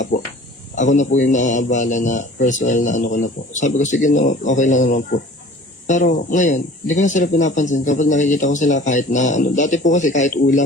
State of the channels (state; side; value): normal; both; correlation 0.46